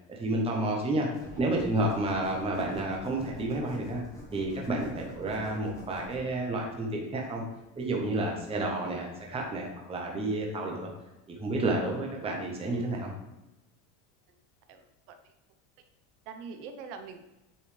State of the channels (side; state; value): both; normal; correlation 0.32